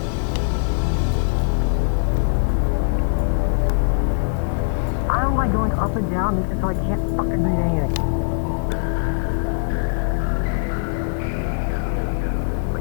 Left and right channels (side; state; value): right; silent; digital silence